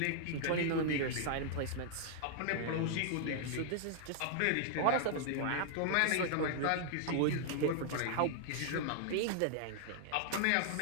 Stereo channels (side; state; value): both; different; correlation -0.01